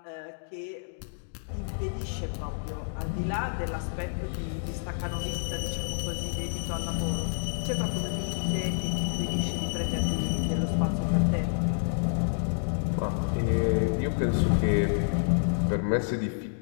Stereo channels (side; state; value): right; silent; digital silence